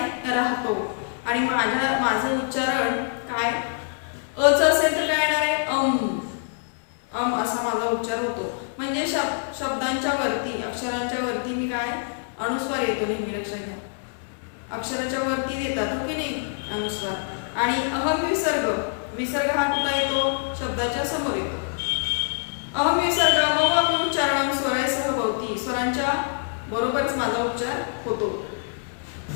राहतो. आणि माझं उच्चारण काय? अच असेल तर काय येणार आहे? अम. अम असा माझा उच्चार होतो. म्हणजे शब्दांच्या वरती, अक्षरांच्या वरती मी काय? अनुस्वार येतो नेहमी, लक्षात घ्या. अक्षराच्या वरती देतात, हो की नाही? अनुस्वार. आणि अहम विसर्ग, विसर्ग हा कुठे येतो? शब्दाच्या समोर येतो. अहम विसर्ग मम अपि उच्चारणं स्वरैसह भवति, स्वरांच्या बरोबरच माझा उच्चार होतो.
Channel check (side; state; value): right; silent; digital silence